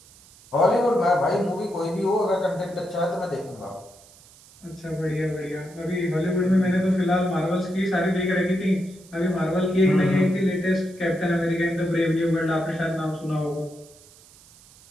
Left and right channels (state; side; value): noise; right; hiss, 25 dB below the sound